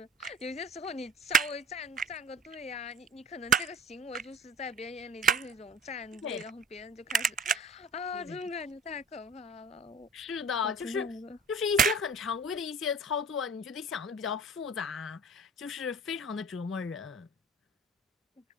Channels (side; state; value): both; normal; correlation 0.43